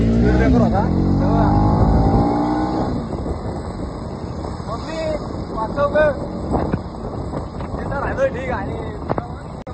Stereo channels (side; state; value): both; identical; correlation 1.00